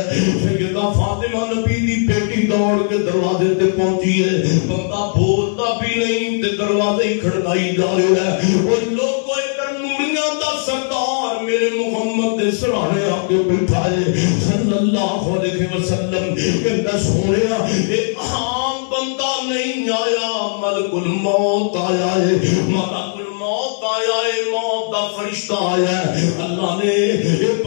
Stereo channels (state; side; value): silent; right; digital silence